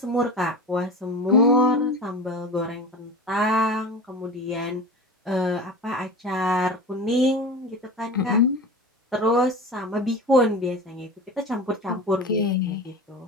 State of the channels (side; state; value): both; normal; correlation 0.31